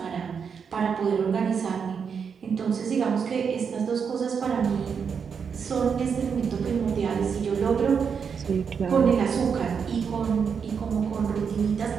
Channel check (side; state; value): left; quieter; 6.5 dB